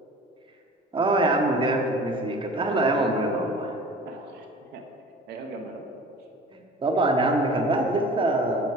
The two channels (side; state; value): both; normal; correlation 0.42